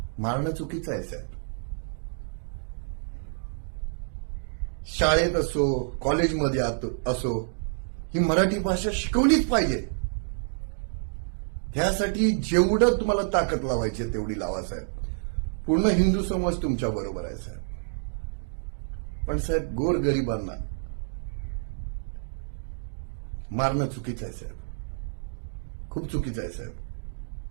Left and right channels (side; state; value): left; silent; digital silence